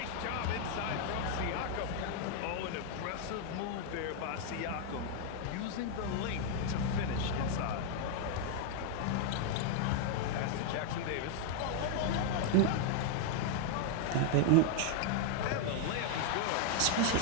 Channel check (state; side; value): different; both; correlation 0.00